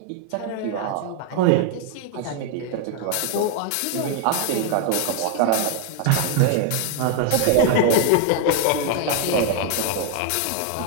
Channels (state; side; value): different; both; correlation 0.00